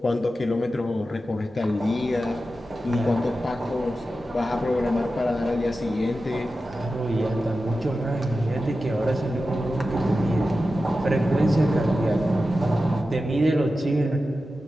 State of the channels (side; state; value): both; normal; correlation 0.92